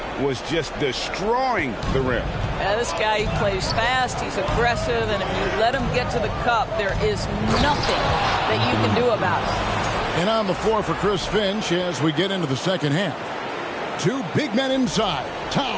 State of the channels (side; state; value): both; identical; correlation 1.00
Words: Was just destroying the rim. Yeah, this guy, he plays fast, he's aggressive, and if you let him get to the cup, there is nothing that you can do about it. And on the floor for Chris Finch as we get into the second half. 2 big men inside,